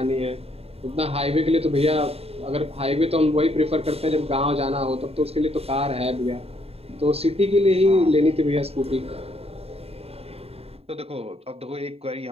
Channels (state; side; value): late; left; 0.29 ms